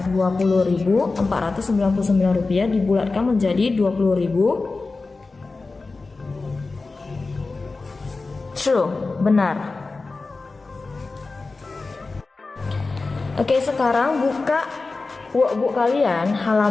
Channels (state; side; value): quieter; right; 3.8 dB